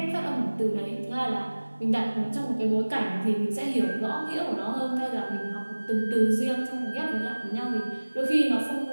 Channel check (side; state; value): both; inverted; correlation -1.00